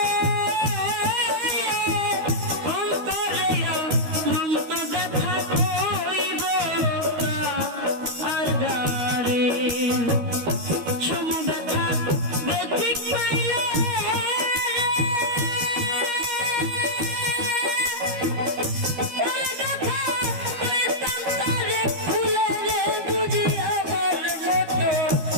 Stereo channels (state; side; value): late; left; 13 ms